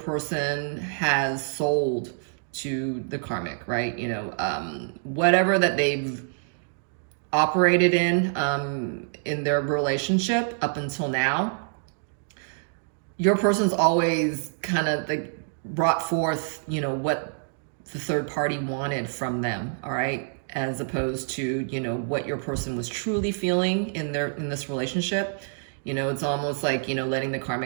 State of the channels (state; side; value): silent; left; digital silence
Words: has sold to the karmic, right? You know, whatever that they've operated in their relationship up until now, your person's always kind of like brought forth, you know, what the third party wanted from them, all right? As opposed to, you know, what your person was truly feeling in this relationship. You know, it's almost like, you know, letting the